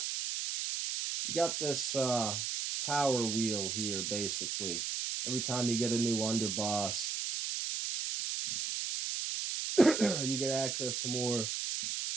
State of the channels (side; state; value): right; noise; hiss, 2 dB below the sound